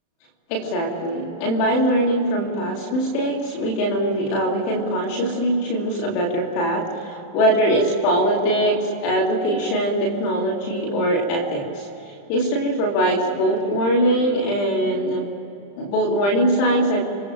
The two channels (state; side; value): late; right; 35 ms